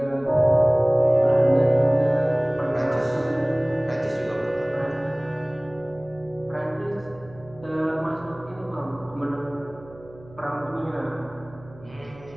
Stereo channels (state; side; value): noise; right; hum, 22 dB below the sound